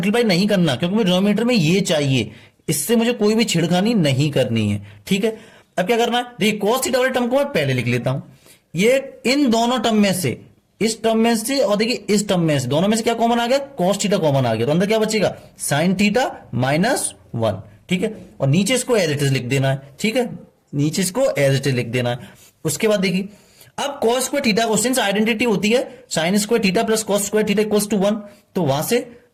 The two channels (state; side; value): identical; both; correlation 1.00